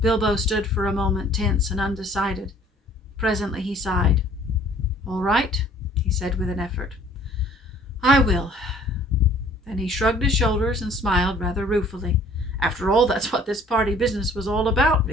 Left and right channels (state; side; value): normal; both; correlation 0.55